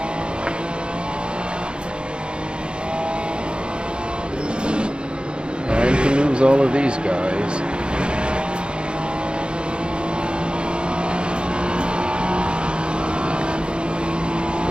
Time to lose all of these guys.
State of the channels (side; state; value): left; late; 0.053 ms